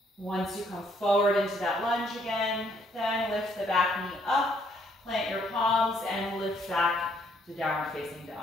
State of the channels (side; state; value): both; normal; correlation 0.68